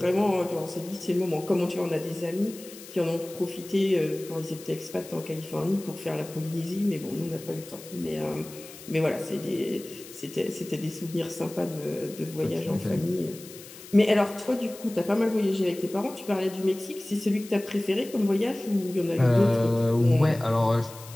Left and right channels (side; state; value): left; noise; hiss, 17 dB below the sound